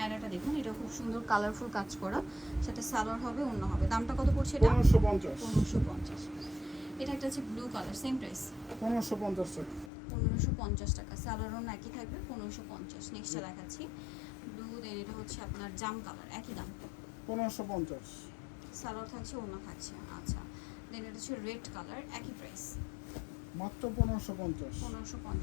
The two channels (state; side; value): drops out; right; at 9.9 s